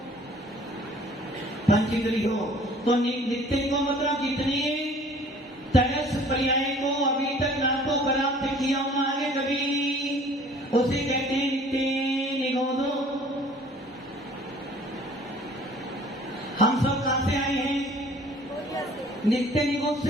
पंचेंद्री हो तो नित्य को मतलब जितने तरस पर्याय को अभी तक ना तो प्राप्त किया होना आगे कभी, उसे कहते हैं नित्य निगोद। हम सब कहां से आए हैं? नित्य निगोद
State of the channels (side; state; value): both; normal; correlation 0.52